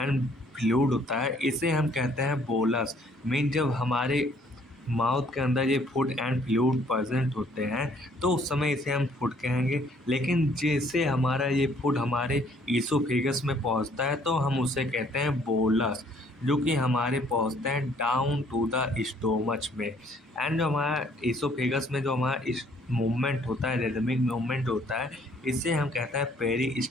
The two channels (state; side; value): normal; both; correlation 0.62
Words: फ्लूइड होता है इसे हम कहते हैं बोलस। मीन जब हमारे माउथ के अंदर ये फूड एंड फ्लूइड प्रेजेंट होते हैं तो उस समय इसे हम फूड कहेंगे, लेकिन जैसे हमारा ये फूड हमारे ईसोफेगस में पहुंचता है तो हम उसे कहते हैं बोलस, जो कि हमारे पहुंचते हैं डाउन टू द स्टोमच में। एंड जो हमारा ईसोफेगस में जो हमारा इस मूवमेंट होता है, रिदमिक मूवमेंट होता है, इसे हम कहते हैं